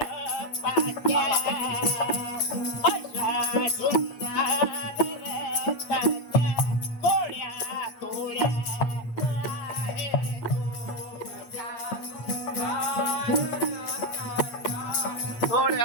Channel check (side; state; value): right; late; 8.6 ms